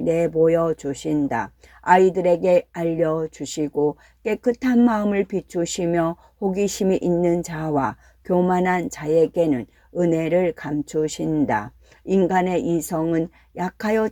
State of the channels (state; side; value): identical; both; correlation 1.00